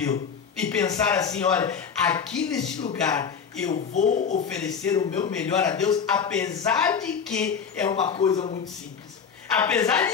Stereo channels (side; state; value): right; quieter; 6.7 dB